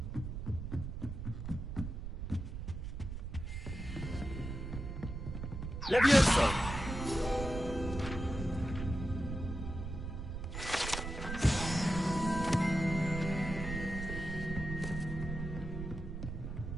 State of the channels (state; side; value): noise; right; rumble, 6 dB below the sound